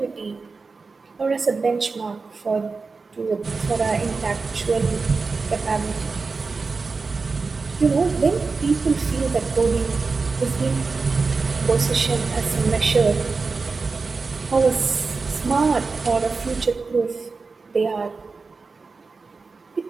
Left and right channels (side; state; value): left; quieter; 4.3 dB